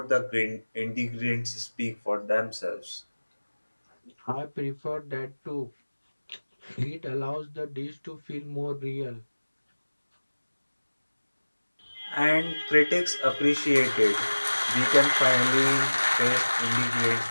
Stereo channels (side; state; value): both; inverted; correlation -1.00